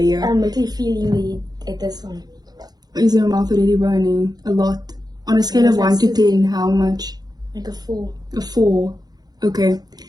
I'm really feeling the heat at this one. Is your mouth already burning? A lot. On a scale of 1 to 10, how much? Like a 4. A 4. Okay.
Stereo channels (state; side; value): late; left; 0.19 ms